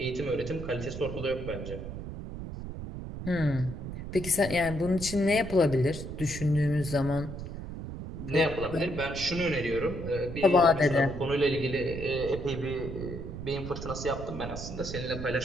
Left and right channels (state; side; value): noise; right; rumble, 8 dB below the sound